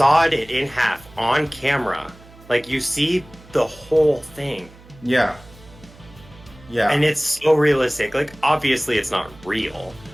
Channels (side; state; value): right; noise; hum, 23 dB below the sound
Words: it in half on camera. Like, you see the whole thing. Yeah. Yeah. And it's so realistic. Like, obviously it's not real.